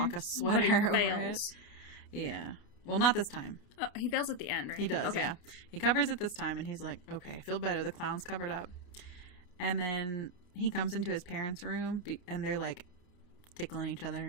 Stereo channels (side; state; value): right; late; 29 ms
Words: sweater over it. Yeah. Well, not this time. Oh, he fails at the end, right? He does, okay. Yeah. He covers it this time and he's like, okay, I feel better. The clown's covered up. And then he comes into his parents' room and they're like tickling each other